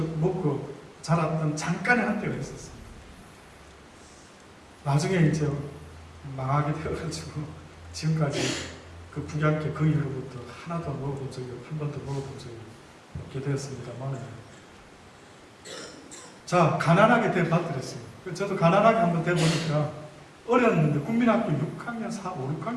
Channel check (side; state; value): both; identical; correlation 1.00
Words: 자랐던 잠깐의 한때가 있었어요. 나중에 이제 망하게 되어가지고 지금까지 그 북양캐 그 이후로부터 하나도 먹어본 적이 한 번도 먹어본 적이 없게 되었습니다만 자 가난하게 대받들었어요. 저도 가난하게 한번 돼보니까 어렸는데 국민학교 6학년, 4, 5,